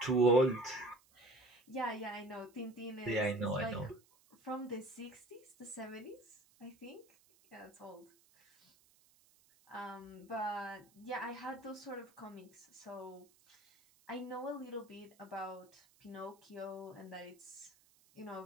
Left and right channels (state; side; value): noise; right; hiss, 30 dB below the sound